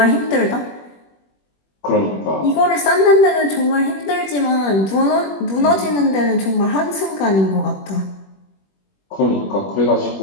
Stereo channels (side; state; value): right; late; 21 ms